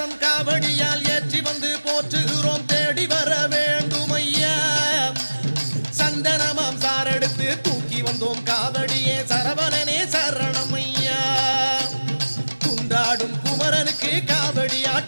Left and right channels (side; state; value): both; inverted; correlation -1.00